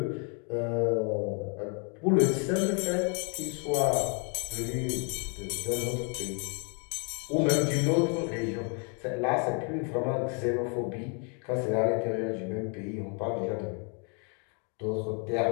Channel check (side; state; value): right; quieter; 37.5 dB